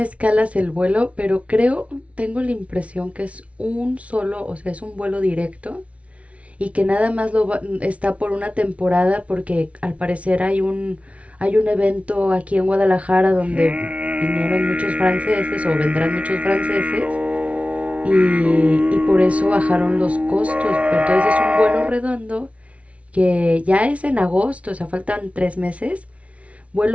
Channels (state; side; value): late; left; 0.064 ms